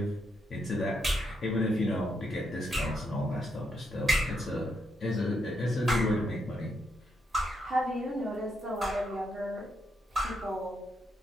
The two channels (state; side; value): normal; both; correlation 0.79